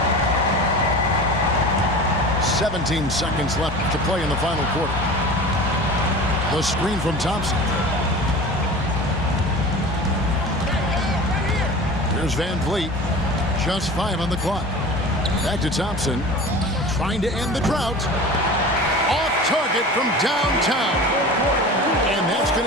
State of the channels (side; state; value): both; normal; correlation 0.36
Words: "17 seconds left to play in the final quarter. The screen from Thompson. Here's Van Vliet. Just 5 on the clock. Back to Thompson. Trying to end the drought. Off target from downtown. And that's